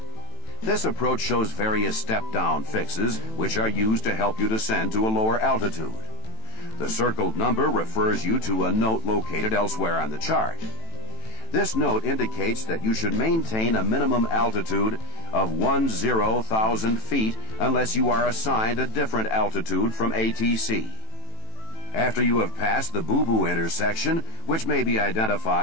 This approach shows various step-down fixes which are used to help you descend to a lower altitude. The circled number refers you to a note located elsewhere on the chart. This note indicates that you should maintain a minimum altitude of 10,000 feet unless you are assigned a different altitude from ATC. After you have passed the boo-boo intersection, which may be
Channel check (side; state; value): right; late; 18 ms